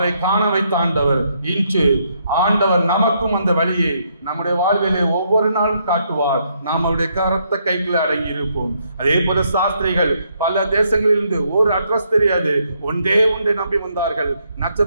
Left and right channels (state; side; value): inverted; both; correlation -0.74